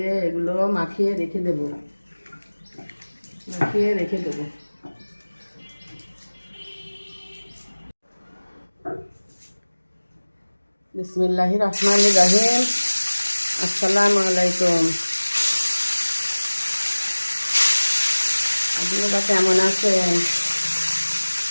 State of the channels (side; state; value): both; inverted; correlation -1.00